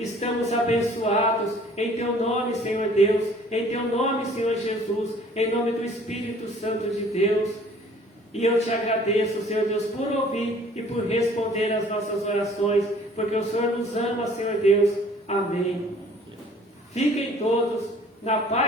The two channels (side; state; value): both; normal; correlation 0.53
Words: abençoados em Teu nome, Senhor Deus, em Teu nome, Senhor Jesus, em nome do Espírito Santo de Deus. E eu Te agradeço, Senhor Deus, por ouvir e por responder às nossas orações, porque o Senhor nos ama, Senhor Deus. Amém. Fiquem todos na